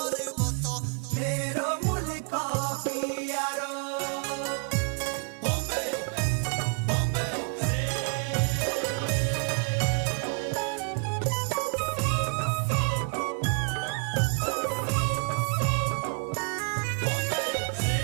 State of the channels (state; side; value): quieter; left; 38.2 dB